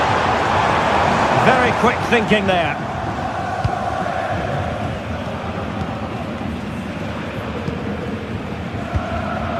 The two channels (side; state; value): both; identical; correlation 1.00